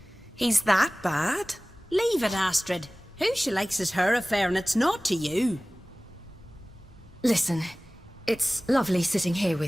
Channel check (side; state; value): both; normal; correlation 0.98